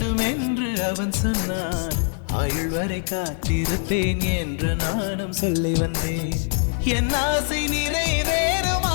என்று அவன் சொன்னான், ஆயுள் வரை காத்திருப்பேன் என்று நானும் சொல்லி வந்தேன். என் ஆசை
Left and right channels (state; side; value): silent; right; 59 dB below the other